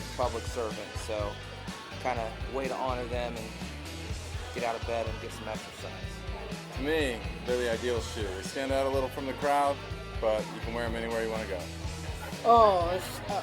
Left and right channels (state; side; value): identical; both; correlation 1.00